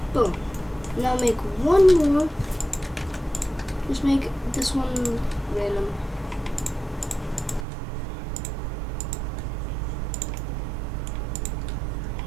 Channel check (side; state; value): left; drops out; at 7.7 s